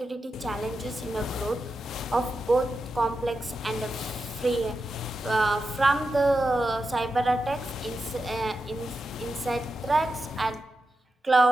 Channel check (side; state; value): both; normal; correlation 0.89